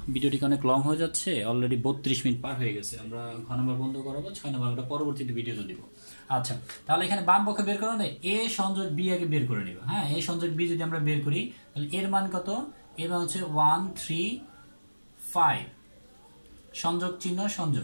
ভিডিওটি অনেক লং হয়ে যাচ্ছে, অলরেডি 32 মিনিট পার হয়ে গেছে, আমরা ঘ নম্বর বন্ধ করাবো, 6 নম্বর আমরা পরবর্তীতে ভিডিওতে দিব। আচ্ছা, তাহলে এখানে বাম পক্ষে বের করে নেই, এ সংযোগ বি আগে বের করে নিব। হ্যাঁ, এ সংযোগ বি যদি আমরা বের করি তাহলে এর মান কত, এর মান হচ্ছে 1 3 5, সংযোগ চিহ্ন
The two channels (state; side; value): inverted; both; correlation -1.00